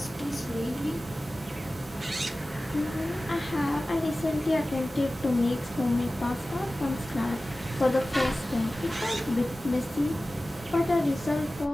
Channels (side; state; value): both; normal; correlation 0.96